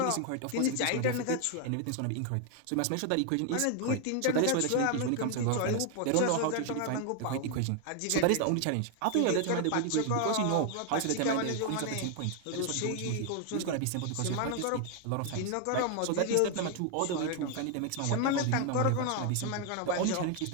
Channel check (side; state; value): both; different; correlation 0.01